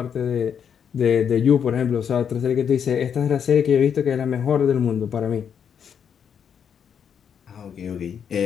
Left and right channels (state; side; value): quieter; right; 7.8 dB